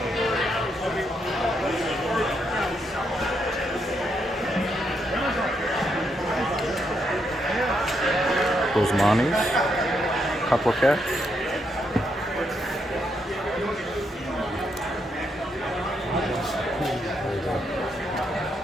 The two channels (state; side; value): normal; both; correlation 0.78